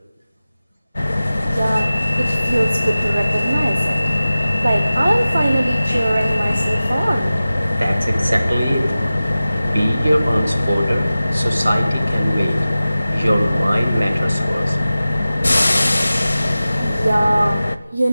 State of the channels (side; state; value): both; inverted; correlation -0.96